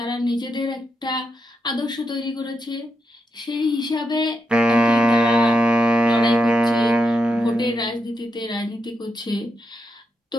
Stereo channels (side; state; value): both; normal; correlation 0.84